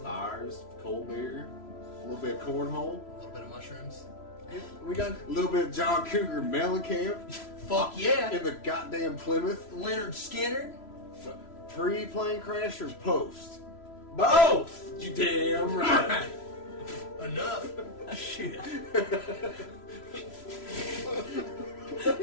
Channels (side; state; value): right; late; 3.0 ms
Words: Fires, cold beer, a little bit of cornhole, A little bit of mushrooms. We got a little bit of John Cougar Mellencamp Fuck yeah! in the goddamn Plymouth. Leonard Skinner. Pre-plane crash or post? both. You damn right. Enough. Shit.